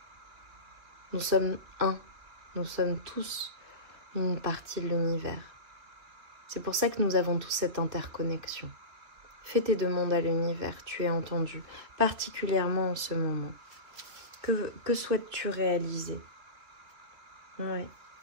Nous sommes un. Nous sommes tous une partie de l'univers. C'est pour ça que nous avons tous cette interconnexion. Fais tes demandes à l'univers. Tu es entendu. Particulièrement en ce moment. Que souhaites-tu réaliser? Ouais.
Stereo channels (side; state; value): left; late; 2.6 ms